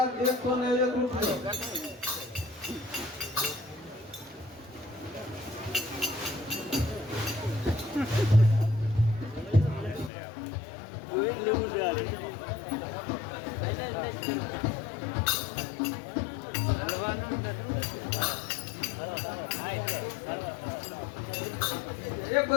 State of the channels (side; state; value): right; drops out; at 10.1 s